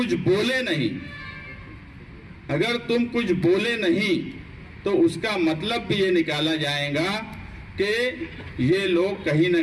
बोले नहीं तो उसका मतलब भी ये निकाला जाएगा कि ये लोग कहीं ना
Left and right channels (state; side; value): identical; both; correlation 1.00